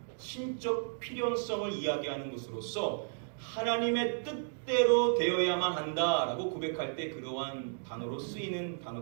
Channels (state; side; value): silent; left; digital silence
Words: 신적 필연성을 이야기하는 것으로서 하나님의 뜻대로 되어야만 한다라고 고백할 때 그러한 단어로 쓰이는